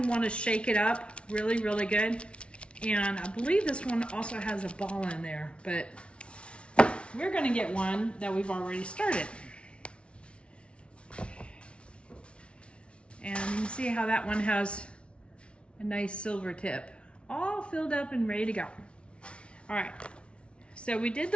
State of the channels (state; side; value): late; right; 0.059 ms